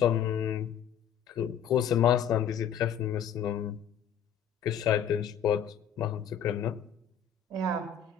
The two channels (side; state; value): right; quieter; 8.3 dB